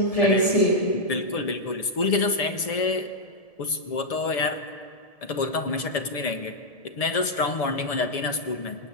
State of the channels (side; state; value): right; late; 1.7 ms